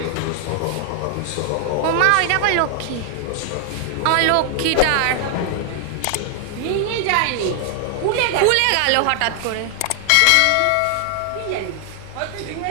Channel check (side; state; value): both; different; correlation 0.00